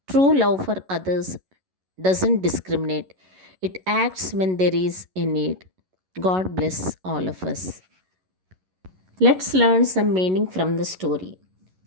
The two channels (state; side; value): late; left; 11 ms